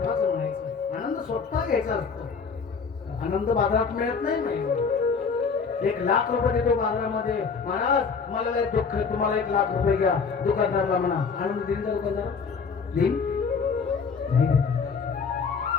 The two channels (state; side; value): quieter; right; 5.5 dB